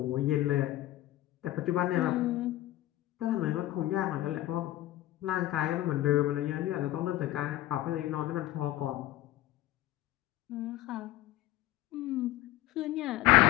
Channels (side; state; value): right; quieter; 15.5 dB